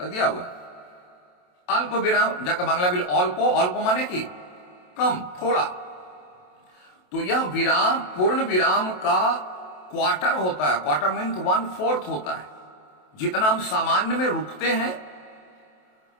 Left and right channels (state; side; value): late; right; 28 ms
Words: दिया हुआ है। अल्प विराम जाकर बांग्ला बिल अल्प, अल्प माने की कम, थोड़ा। तो यह विराम पूर्ण विराम का क्वार्टर होता है। क्वार्टर मीन्स 1/4 होता है। जितना हम सामान्य में रुकते हैं